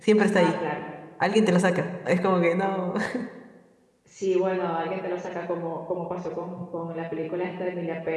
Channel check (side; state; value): both; identical; correlation 1.00